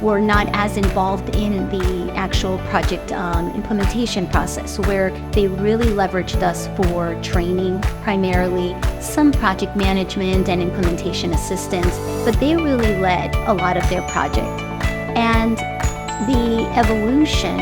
were not as involved in the actual project implementation process, where they really leveraged us for training, primarily some project management and implementation assistance, but they really led a lot of their project. And the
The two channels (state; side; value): identical; both; correlation 1.00